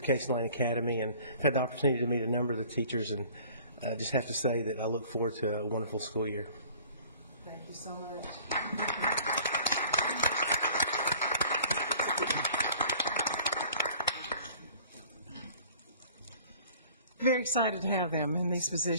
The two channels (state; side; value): inverted; both; correlation -0.50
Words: Case Lane Academy, and I've had the opportunity to meet a number of the teachers, and I just have to say that I look forward to a wonderful school year. Thank you so much. Very excited to have them in these